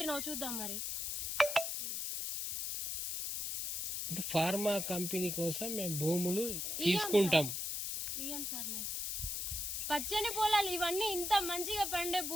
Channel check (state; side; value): noise; left; hiss, 1 dB below the sound